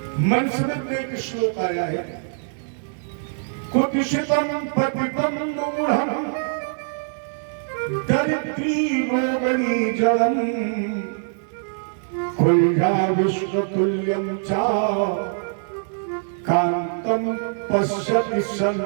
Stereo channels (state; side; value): silent; left; digital silence